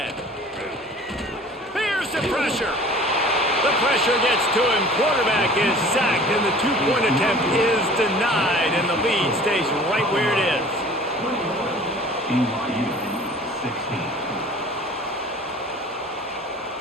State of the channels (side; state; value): both; normal; correlation 0.46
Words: Here's the pressure. The pressure gets to him. Quarterback is sacked, and the 2-point attempt is denied, and the lead stays right where it is. BYU 16.